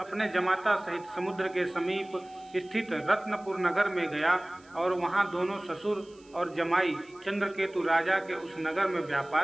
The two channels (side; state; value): right; noise; hiss, 29 dB below the sound